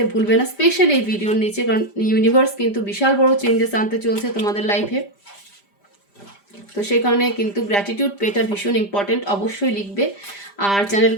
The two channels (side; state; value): right; late; 5.0 ms